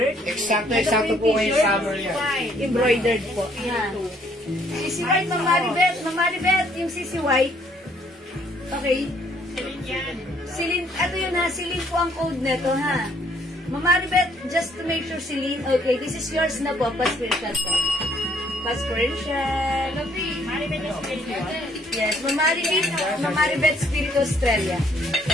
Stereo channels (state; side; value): normal; both; correlation 0.65